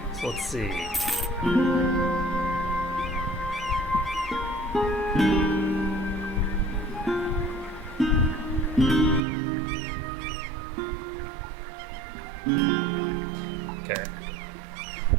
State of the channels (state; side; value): drops out; left; at 9.2 s